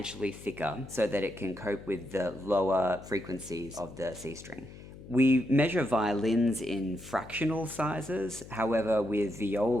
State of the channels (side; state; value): left; noise; hum, 16 dB below the sound